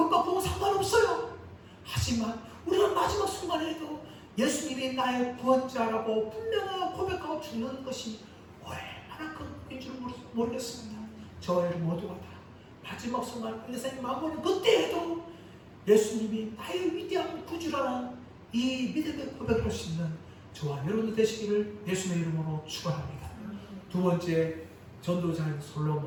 보고 상관없어요. 하지만 우리가 마지막 순간에도 예수님이 나의 구원자라고 분명하게 고백하고 죽는 것이 얼마나 큰 것인 줄 모르겠습니다. 저희 모두가 다 마지막 순간 인생의 마무리 그때에도 예수님이 나의 위대한 구주라는 이 믿음의 고백을 할 수 있는 저와 여러분들 되시기를 예수님의 이름으로 축원합니다. 두 번째, 전도자인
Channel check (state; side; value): identical; both; correlation 1.00